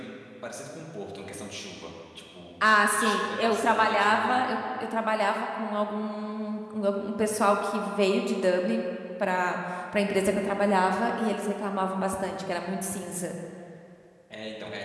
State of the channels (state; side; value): identical; both; correlation 1.00